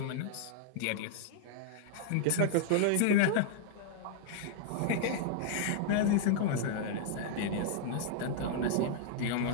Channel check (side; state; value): both; different; correlation -0.01